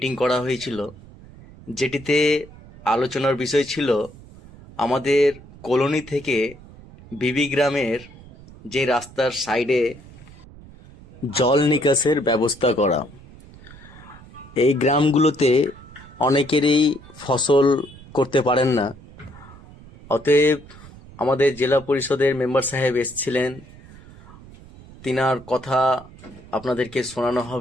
করা হয়েছিল, যেটিতে আলোচনার বিষয় ছিল আমাদের কলোনি থেকে বিবিগ্রামের যে রাস্তার সাইডে জল নিকাশের ব্যবস্থা করা। এই গ্রামগুলোতে অনেকেরই ফসল করতে পারেন না, অতএব আমাদের জেলা পরিষদের মেম্বার সাহেব এসেছিলেন, তিনার কথা আপনাদেরকে শোনানো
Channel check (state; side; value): noise; right; rumble, 20 dB below the sound